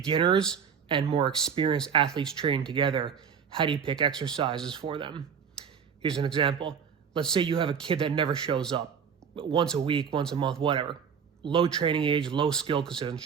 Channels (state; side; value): quieter; left; 7.1 dB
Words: and more experienced athletes training together. How do you pick exercises for them? Here's an example. Let's say you have a kid that never shows up, once a week, once a month, whatever. Low training age, low skill because they doesn't